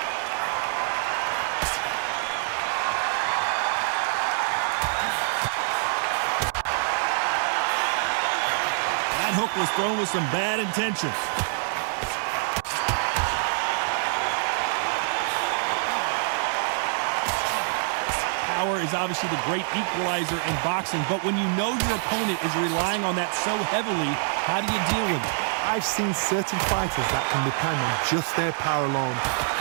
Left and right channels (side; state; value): left; silent; 61 dB below the other